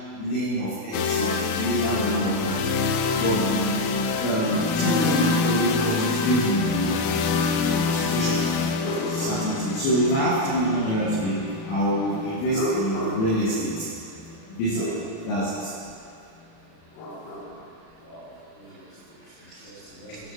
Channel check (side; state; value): right; late; 37 ms